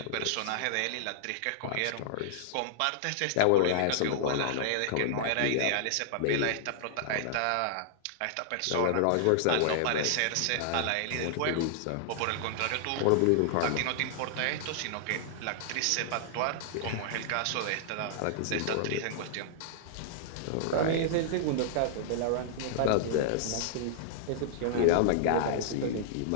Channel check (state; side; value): different; both; correlation -0.01